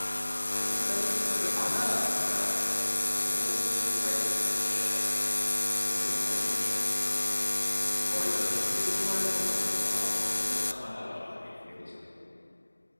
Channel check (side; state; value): both; inverted; correlation -1.00